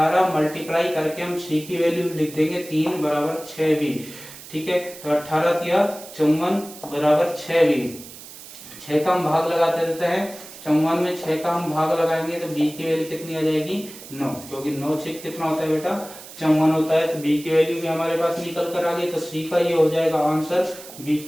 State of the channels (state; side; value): noise; right; hiss, 16 dB below the sound